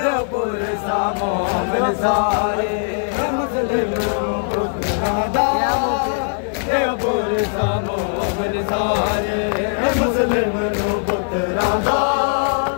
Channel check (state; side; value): silent; right; 66 dB below the other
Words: सा मोमिन सारे मुस्लिम नो पुत्रां दा देवपुर सा मोमिन सारे मुस्लिम नो पुत्रां दा